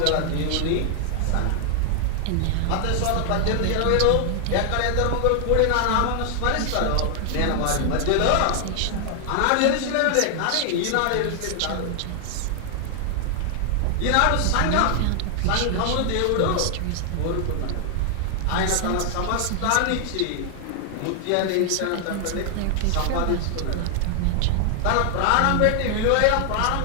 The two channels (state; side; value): different; both; correlation 0.00